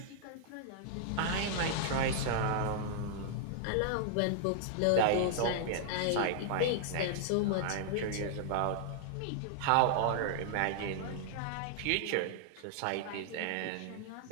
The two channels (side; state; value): both; different; correlation -0.01